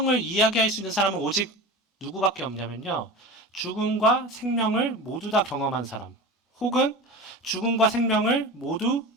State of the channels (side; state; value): both; normal; correlation 0.32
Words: 이야기할 수 있는 사람은 오직 누구밖에 없냐면요. 죽음과 생명을 모두 다 경험한 사람, 혹은 죽음과 생명을 모두